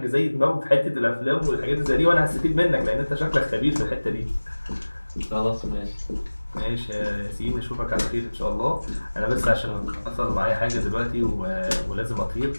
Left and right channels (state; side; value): inverted; both; correlation -1.00